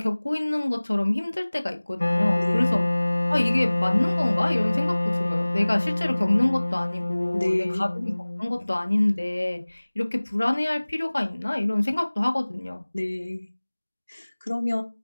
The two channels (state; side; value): inverted; both; correlation -1.00